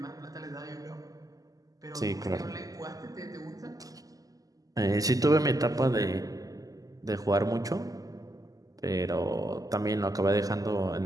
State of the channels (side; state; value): left; late; 0.17 ms